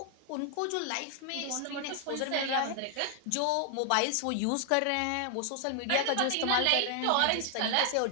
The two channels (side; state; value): both; different; correlation 0.00